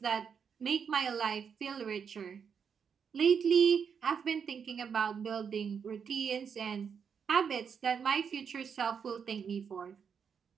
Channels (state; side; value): quieter; left; 6.8 dB